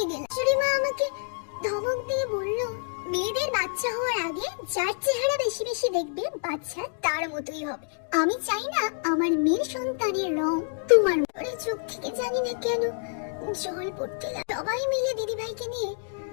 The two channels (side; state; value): right; silent; digital silence